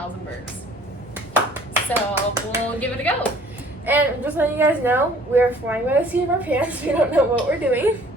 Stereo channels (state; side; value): normal; both; correlation 0.54